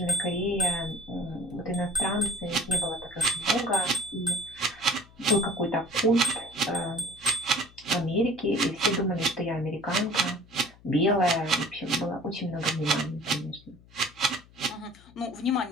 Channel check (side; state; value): left; noise; hum, 25 dB below the sound